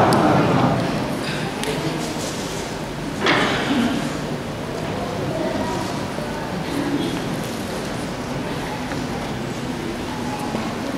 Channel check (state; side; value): identical; both; correlation 1.00